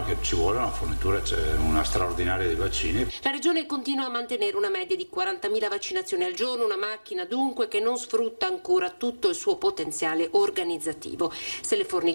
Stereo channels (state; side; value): inverted; both; correlation -1.00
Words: che ci vuole una fornitura, c'è una straordinaria di vaccini. La Regione continua a mantenere una media di 40.000 vaccinazioni al giorno, una macchina dunque che non sfrutta ancora tutto il suo potenziale organizzativo. Se le